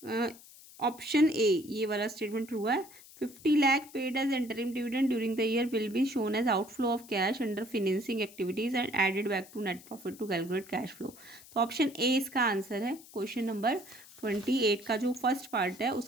ऑप्शन ए, ये वाला स्टेटमेंट ट्रू है। 50 lakh paid as interim dividend during the year will be shown as outflow of cash under financing activities and added back to net profit to calculate cash flow। तो option A इसका answer है। Question number 28 का जो first part है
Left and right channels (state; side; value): noise; left; hiss, 20 dB below the sound